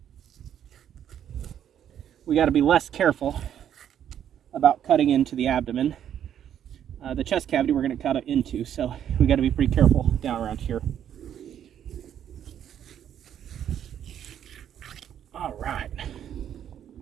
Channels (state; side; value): quieter; left; 9.7 dB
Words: we got to be less careful about cutting into the abdomen. The chest cavity we're going to cut it into, so we got to be pretty careful down around here. All right.